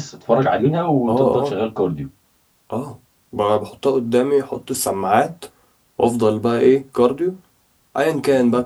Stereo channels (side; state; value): both; identical; correlation 1.00